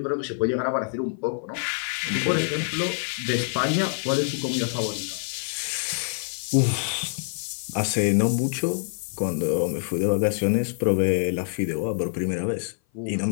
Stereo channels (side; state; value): right; silent; 56 dB below the other